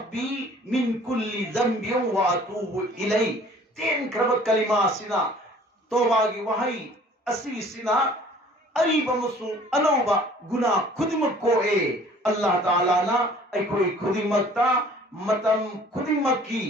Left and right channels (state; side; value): normal; both; correlation 0.52